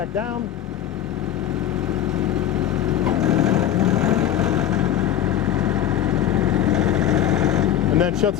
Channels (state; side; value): quieter; right; 10.9 dB